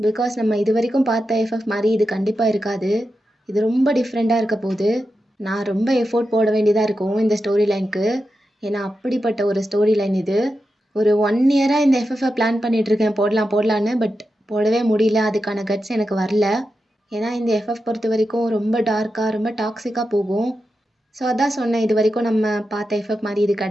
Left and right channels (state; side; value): normal; both; correlation 0.89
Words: நம்ம இது வரைக்கும் பார்த்த எஃப்எஃப் மாதிரி இது கண்டிப்பாக இருக்காது. இது ரொம்ப டிஃப்ரெண்ட்டாக இருக்க போகுது. நான் ரொம்ப எஃபோர்ட் போட வேண்டியதாக இருக்கும் இந்த ஸ்டோரி லைனுக்கு. ஏன்னா அப்படிப்பட்ட ஒரு ஸ்டோரி லைன் இது. ஒரு 1 இயராக இந்த எஃப்எஃப்பை பிளான் பண்ணிகிட்ருக்கேன் போடலான்னு. பட் போடவே முடியல. அதுக்கான கட்ஸ் எனக்கு வரல. ஏன்னா இந்த எஃப்எஃப் பொறுத்த வரைக்கும் ரொம்ப டார்க்காக, ரொம்ப டாக்ஸிக்காக போகும். ஸோ அதான் சொன்னேன், இது வரைக்கும் நம்ம பார்த்த எஃப்எஃப் மாதிரி இது